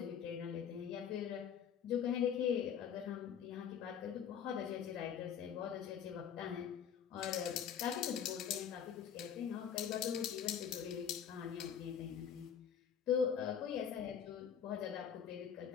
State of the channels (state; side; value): quieter; right; 8.3 dB